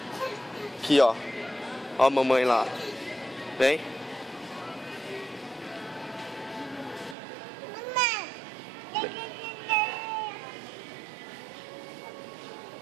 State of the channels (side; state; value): left; drops out; at 7.2 s